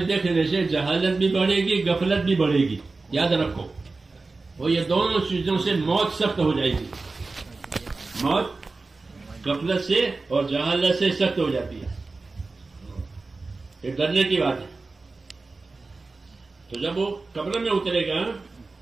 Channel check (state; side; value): quieter; left; 3.7 dB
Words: دیکھنے سے جہالت بھی بڑھے گی، غفلت بھی بڑھے گی. یاد رکھو، وہ یہ دونوں چیزوں سے موت سخت ہو جائے گی. موت غفلت سے اور جہالت سے سخت ہو جاتی ہے. یہ ڈرنے کی بات ہے. تو جب وہ قبر میں اترے گا